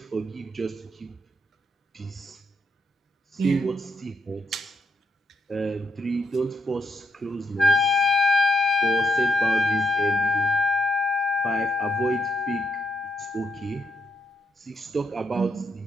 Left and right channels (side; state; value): both; normal; correlation 0.77